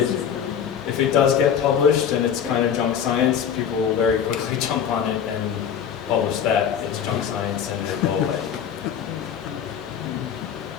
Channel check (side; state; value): right; quieter; 8.2 dB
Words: If it does get published and it's kind of junk science, people will very quickly jump on it and publish that. It's junk science and it will go away.